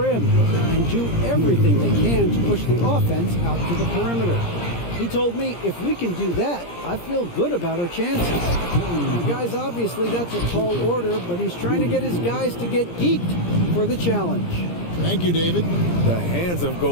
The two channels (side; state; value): right; late; 17 ms